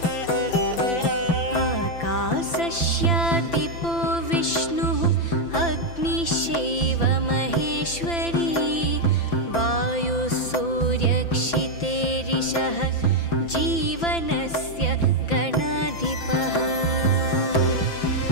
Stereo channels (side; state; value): right; late; 5.9 ms